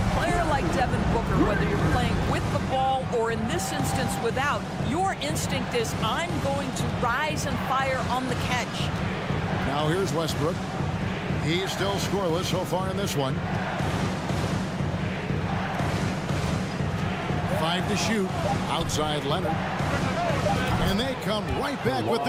player like Devin Booker, whether you're playing with the ball or in this instance without, your instinct is, I'm going to rise and fire on the catch. Now here's Westbrook. He's still scoreless so far in this one. 5 to shoot. Outside Leonard. And they come right back with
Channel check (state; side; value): identical; both; correlation 1.00